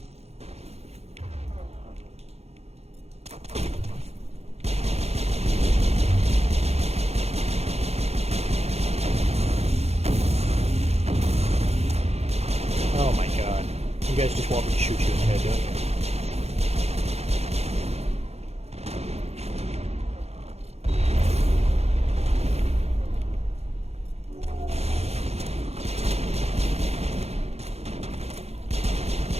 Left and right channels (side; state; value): left; late; 0.31 ms